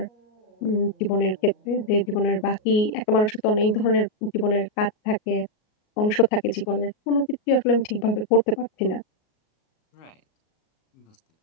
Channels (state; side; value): late; right; 38 ms